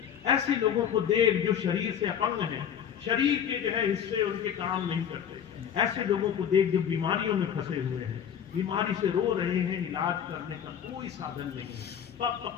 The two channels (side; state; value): right; quieter; 8.7 dB